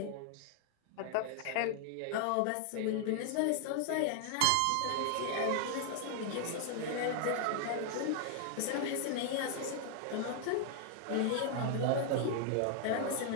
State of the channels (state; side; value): different; both; correlation 0.00